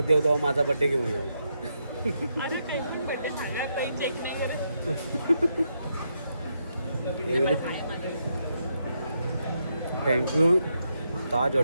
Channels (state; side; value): inverted; both; correlation -0.80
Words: येऊ तेव्हा माझा बड्डे घेऊन येऊ. अरे काही पण बड्डे झाला काही चेक नाही करत. थँक्यू ताज